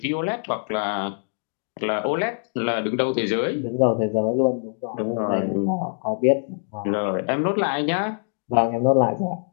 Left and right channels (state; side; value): silent; right; digital silence